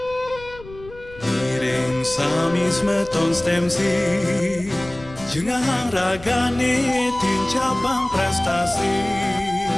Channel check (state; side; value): noise; left; rumble, 19 dB below the sound